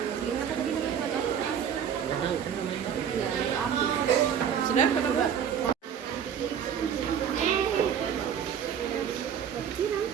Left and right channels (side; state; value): left; quieter; 8.3 dB